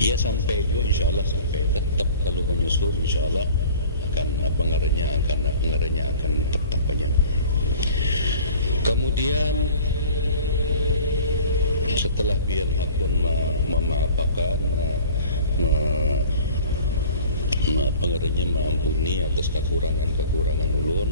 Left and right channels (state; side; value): inverted; both; correlation -0.44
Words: Ya sampai juga insya Allah sampai tetap kalau menyusul insya Allah akan pengarahnya akan tetap aja. Kemudian setelah biar hakun memaafkan pengarahnya mengampuni atas kekurangan